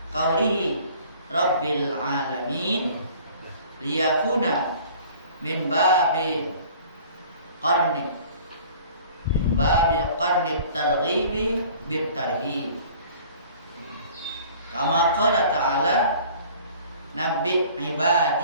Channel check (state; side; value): inverted; both; correlation -0.49